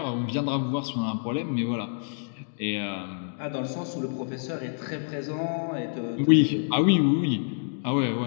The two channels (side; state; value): right; silent; digital silence